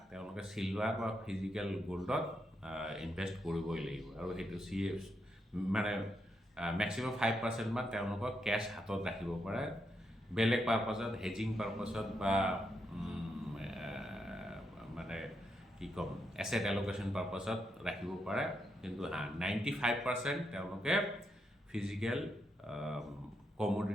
তেওঁলোকে চিলভাৰ বা ফিজিকেল গ'ল্ডত ইনভেষ্ট কৰিবই লাগিব। আৰু সেইটো মানে মেক্সিমাম 5% মান তেওঁলোকক কেছ হাতত ৰাখিব পাৰে, বেলেগ পাৰপাছত, হেজিং পাৰপাছত বা মানে কি ক'ম, এছেট এল'কেশ্যন পাৰপাছত ৰাখিব পাৰে। কিন্তু 95% তেওঁলোকে ফিজিকেল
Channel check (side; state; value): both; normal; correlation 0.81